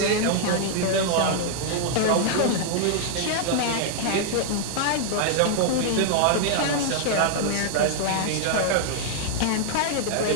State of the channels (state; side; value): different; both; correlation -0.01